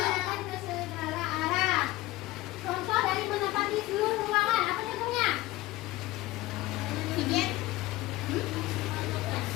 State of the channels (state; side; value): quieter; right; 18.4 dB